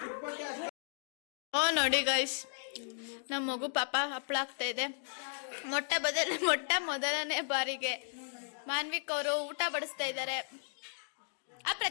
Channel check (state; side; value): silent; right; digital silence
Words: ನೋಡಿ ಗೈಸ್, ನಮ್ಮ ಮಗು ಪಾಪ ಹಪ್ಪಳ ಆಗ್ತಾ ಇದೆ. ಮೊಟ್ಟ ಮೊದಲನೇ ಬಾರಿಗೆ ಮಾನ್ವಿಕ್ ಅವರು ಊಟ ಬಡಿಸ್ತಾ ಇದ್ದಾರೆ. ಆ